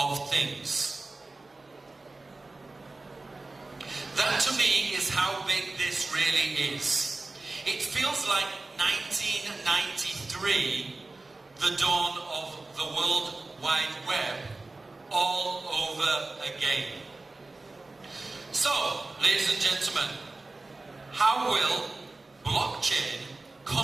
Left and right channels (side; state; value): left; quieter; 3.3 dB